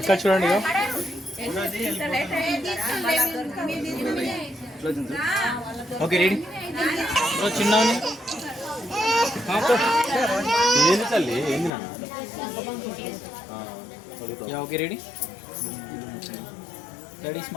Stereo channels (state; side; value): drops out; right; at 11.7 s